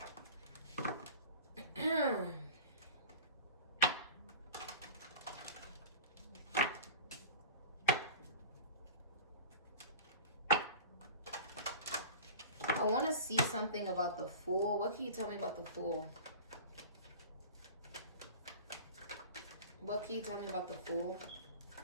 I want to see something about the Fool. What can you tell me about the Fool? What can you tell me about the Fool?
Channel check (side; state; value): both; inverted; correlation -0.36